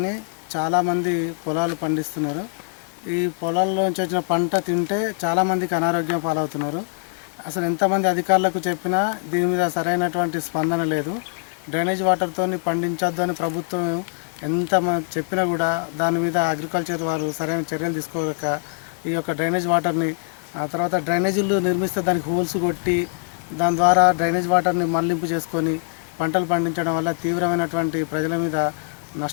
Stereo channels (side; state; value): right; silent; 59 dB below the other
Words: చాలామంది పొలాలు పండిస్తున్నారు. ఈ పొలాల్లో నుంచి వచ్చిన పంట తింటే చాలామందికి అనారోగ్యం పాలవుతున్నారు. అసలు ఎంతమంది అధికారులకు చెప్పినా దీని మీద సరైనటువంటి స్పందన లేదు. డ్రైనేజ్ వాటర్తో పండించొద్దు అని ప్రభుత్వం ఎంత చెప్పినా కూడా దాని మీద అగ్రికల్చర్ వారు సరైన చర్యలు తీసుకోలేక ఈ యొక్క డ్రైనేజ్ వాటర్ని ఆ తర్వాత డ్రైనేజీలు నిర్మిస్తే దానికి హోల్స్ కొట్టి దాని ద్వారా డ్రైనేజ్ వాటర్ని మళ్లింపు చేసుకొని పంటలు పండించడం వల్ల తీవ్రమైనటువంటి ప్రజల మీద